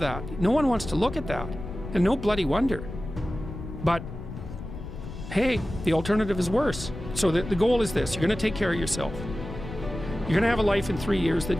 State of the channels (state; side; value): noise; left; rumble, 10 dB below the sound